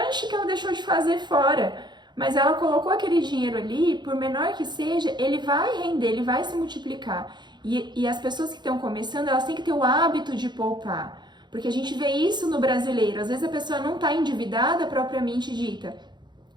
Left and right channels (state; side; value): late; left; 0.21 ms